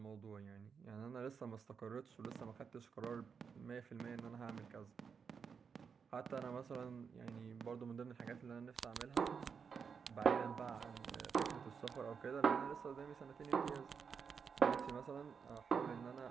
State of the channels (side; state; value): left; quieter; 6.2 dB